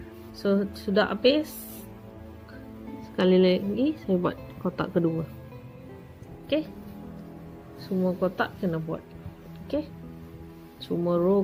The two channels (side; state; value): both; identical; correlation 1.00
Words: So, sudah habis. Sekali lagi saya buat kotak kedua. Okay. Semua kotak kena buat. Okay. Semua row